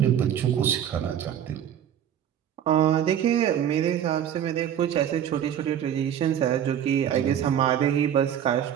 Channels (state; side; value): quieter; left; 9.7 dB